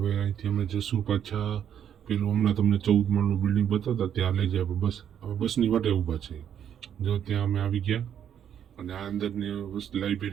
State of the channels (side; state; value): left; quieter; 9.2 dB